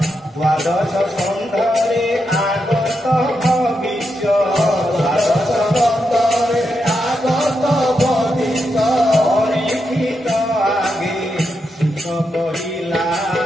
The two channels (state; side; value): normal; both; correlation 0.85